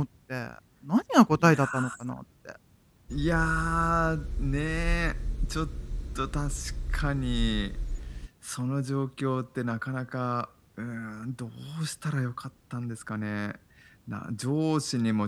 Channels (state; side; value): identical; both; correlation 1.00